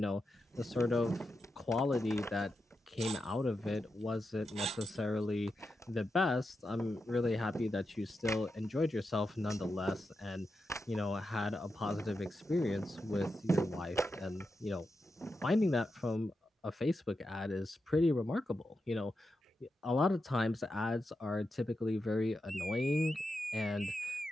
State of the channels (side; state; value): both; normal; correlation 0.88